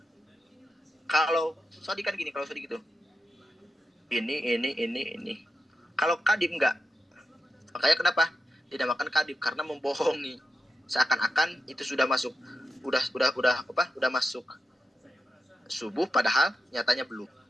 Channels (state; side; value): normal; both; correlation 0.89